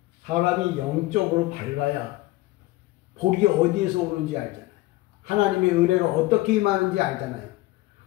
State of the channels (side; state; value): right; quieter; 18.5 dB